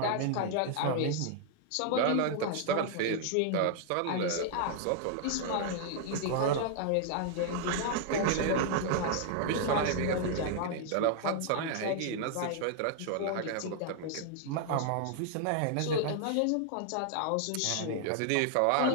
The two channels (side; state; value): both; different; correlation 0.00